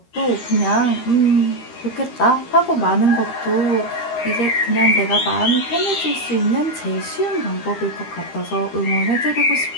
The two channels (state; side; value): late; right; 13 ms